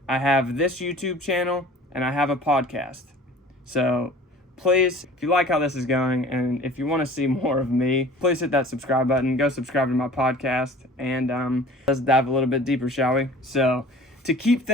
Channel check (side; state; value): both; normal; correlation 0.46